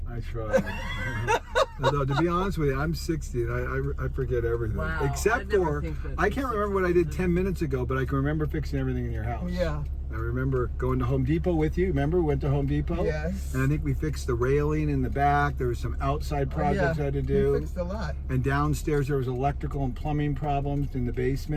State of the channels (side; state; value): both; identical; correlation 1.00